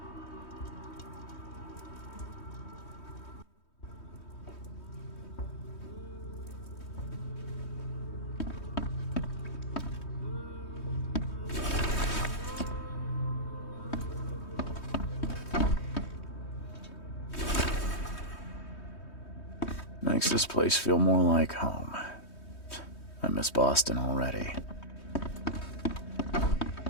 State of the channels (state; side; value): late; right; 3.2 ms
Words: Makes this place feel more like home. I miss Boston already.